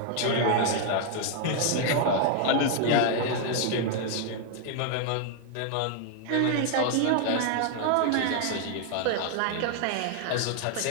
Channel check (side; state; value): both; different; correlation 0.00